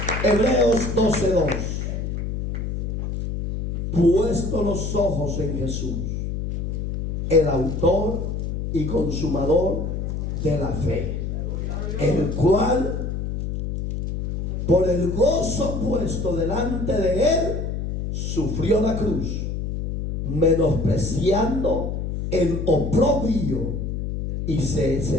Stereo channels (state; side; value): noise; left; hum, 3 dB below the sound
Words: Hebreos 12:2. Puesto los ojos en Jesús, el autor y consumador de la fe, el cual por el gozo puesto delante de él sufrió la cruz, menospreciando el oprobio, y se